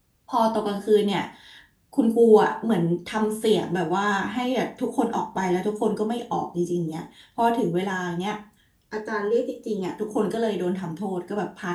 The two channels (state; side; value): identical; both; correlation 1.00